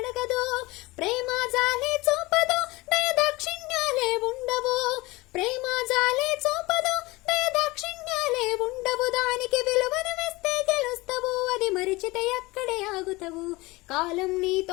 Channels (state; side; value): quieter; right; 21.9 dB